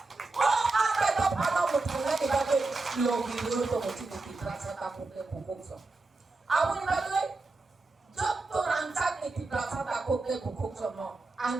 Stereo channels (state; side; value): quieter; left; 3.5 dB